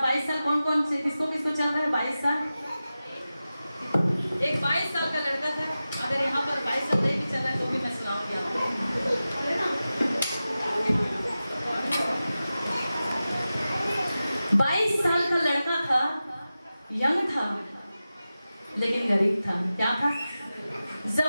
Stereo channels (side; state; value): both; inverted; correlation -0.94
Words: 22 साल कौन कौन से किसको किसको चल रहा है? 22 साल। एक 22 साल का लड़का था। अगर यहाँ पर 22 साल नहीं भी चल रहा है तो भी मैं सुनाऊंगी आपको। 22 साल का लड़का था, यंग था लेकिन गरीब था। क्या था?